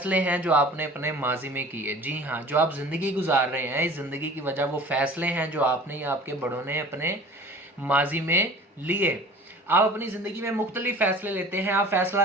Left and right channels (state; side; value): normal; both; correlation 0.44